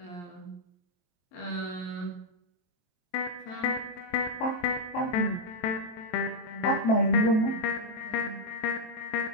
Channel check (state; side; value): late; right; 23 ms